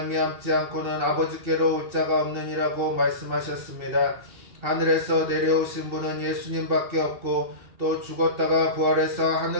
않고는 아버지께로 올 자가 없느니라고 말씀하셨습니다. 하늘에서 내려오신 분은 예수님밖에 없고 또 죽었다가 부활해서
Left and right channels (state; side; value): late; left; 2.8 ms